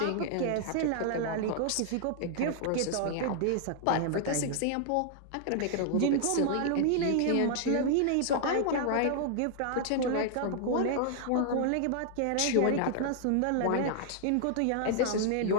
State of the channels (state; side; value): different; both; correlation 0.00